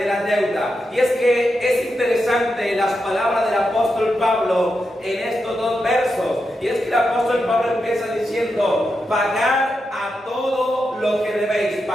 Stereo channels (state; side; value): normal; both; correlation 0.87